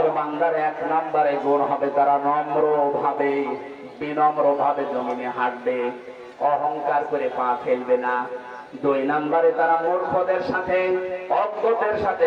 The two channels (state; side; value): identical; both; correlation 1.00